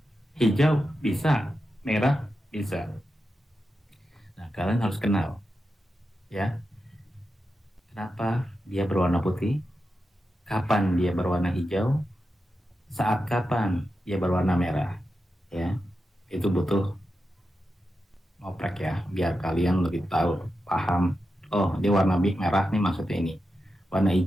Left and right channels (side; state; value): both; normal; correlation 0.89